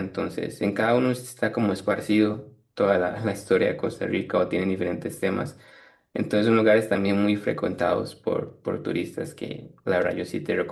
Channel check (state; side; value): identical; both; correlation 1.00